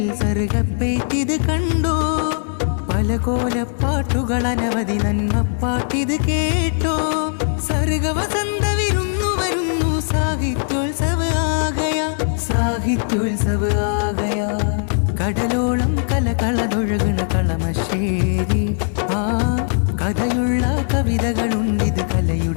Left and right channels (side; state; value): right; silent; digital silence